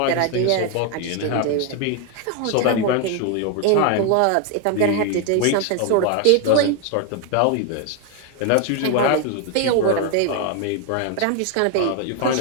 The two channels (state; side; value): different; both; correlation 0.01